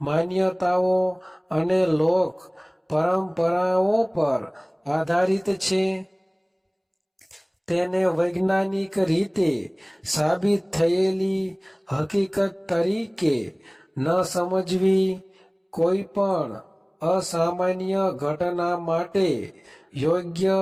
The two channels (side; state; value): both; identical; correlation 1.00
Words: માન્યતાઓ અને લોક પરંપરાઓ પર આધારિત છે. તેને વૈજ્ઞાનિક રીતે સાબિત થયેલી હકીકત તરીકે ન સમજવી. કોઈ પણ અસામાન્ય ઘટના માટે યોગ્ય